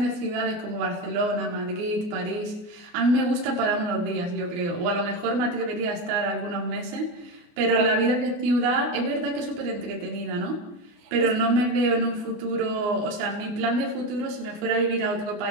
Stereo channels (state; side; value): late; left; 29 ms